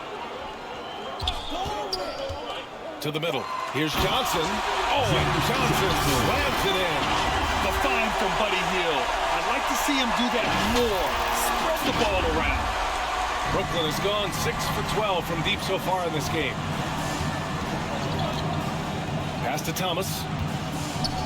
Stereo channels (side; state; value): both; identical; correlation 1.00